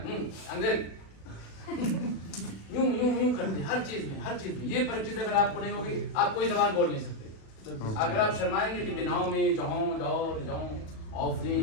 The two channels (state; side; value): late; right; 36 ms